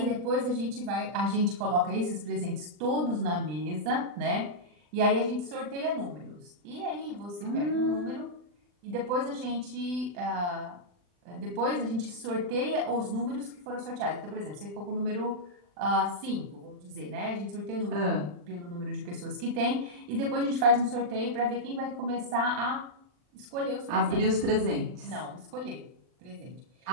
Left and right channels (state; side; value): late; left; 40 ms